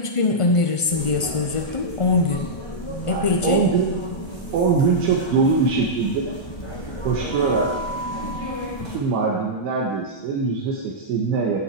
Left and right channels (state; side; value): late; right; 1.5 ms